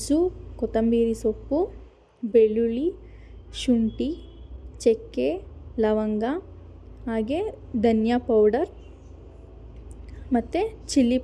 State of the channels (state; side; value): identical; both; correlation 1.00